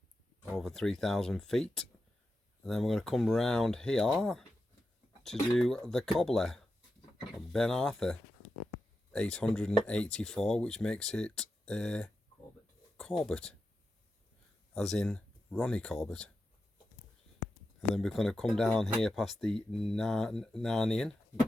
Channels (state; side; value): normal; both; correlation 0.89